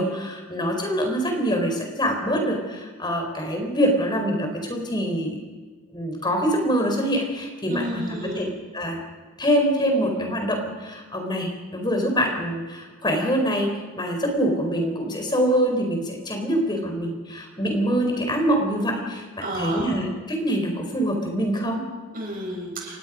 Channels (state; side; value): normal; both; correlation 0.42